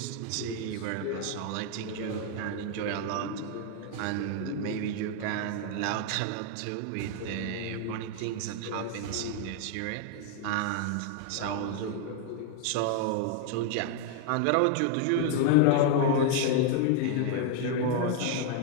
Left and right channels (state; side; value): different; both; correlation 0.00